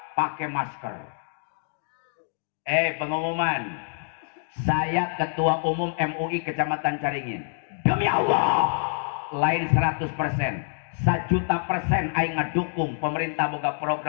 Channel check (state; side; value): silent; right; 58 dB below the other